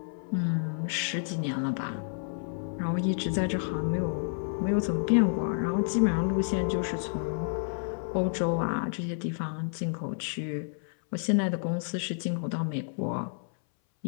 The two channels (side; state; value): right; silent; 58 dB below the other